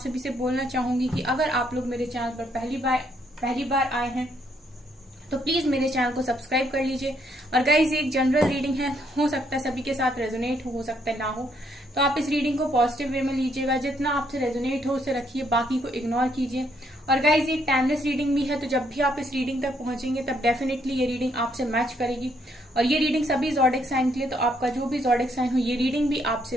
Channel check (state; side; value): normal; both; correlation 0.71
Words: से बोलना चाहूंगी कि अगर आप लोग मेरे चैनल पर पहली बार आए हैं तो प्लीज मेरे चैनल को सब्सक्राइब कर लीजिए। और गाइस, एक जनरल रीडिंग है, हो सकता है सभी के साथ रेजोनेट हो सकता है ना हो, तो आप इस रीडिंग को पॉजिटिव वे में लीजिएगा। जितना आपसे रेजोनेट हो उसे रखिए, बाकी को इग्नोर कीजिए। और गाइस, ये टाइमलेस रीडिंग भी है, तो जब भी आप इस रीडिंग तक पहुंचेंगे तब डेफिनेटली ये रीडिंग आपसे मैच करेगी। और ये रीडिंग सभी ज़ोडिक साइन के लिए, तो आपका जो भी ज़ोडिक साइन हो ये रीडिंग भी